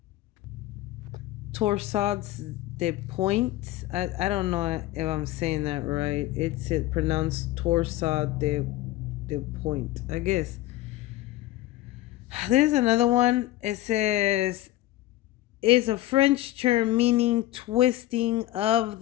Torsades de Point. I don't know if I'm saying that right. It's pronounced Torsade de Point, I guess. There's another one. It says is a French term meaning twisting of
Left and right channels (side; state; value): right; quieter; 15.7 dB